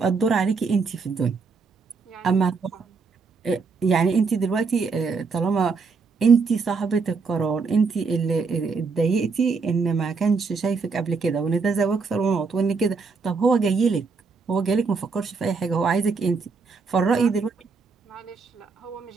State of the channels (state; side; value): quieter; left; 4.7 dB